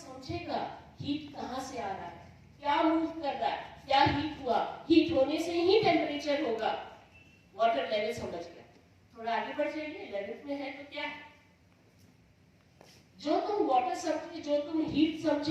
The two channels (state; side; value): identical; both; correlation 1.00